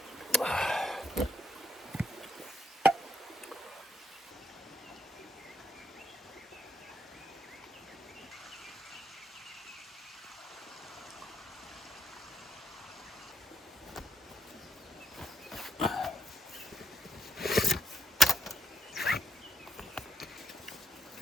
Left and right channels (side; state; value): both; normal; correlation 0.73